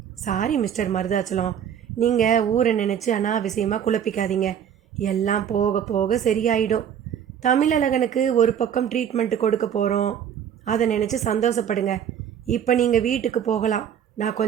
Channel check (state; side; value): quieter; left; 8.9 dB